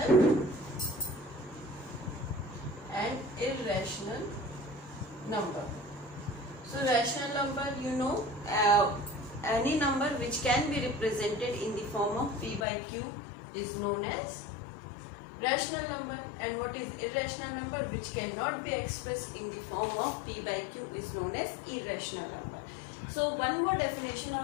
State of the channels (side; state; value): right; drops out; at 12.7 s